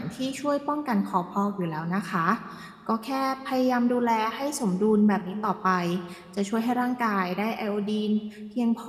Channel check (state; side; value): identical; both; correlation 1.00